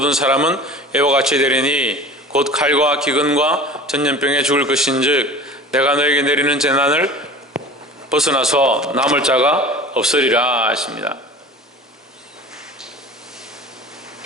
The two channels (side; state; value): both; normal; correlation 0.39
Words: 사람은 이와 같이 되리니 곧 칼과 기근과 전염병에 죽을 것인즉 내가 너에게 내리는 재난을 벗어나서 남을 자가 없으리라 하십니다.